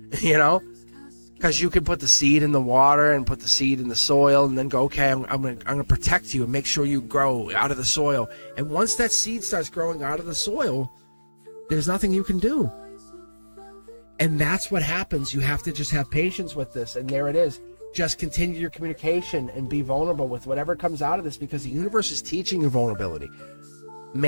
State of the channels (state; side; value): inverted; both; correlation -1.00